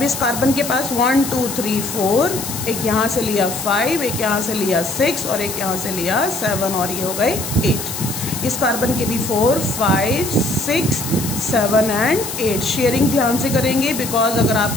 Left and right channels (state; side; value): noise; left; hiss, 6 dB below the sound